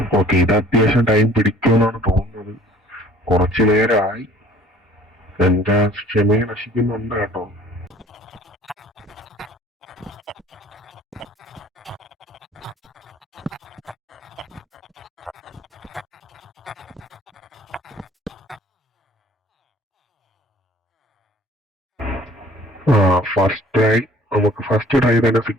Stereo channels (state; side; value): normal; both; correlation 0.52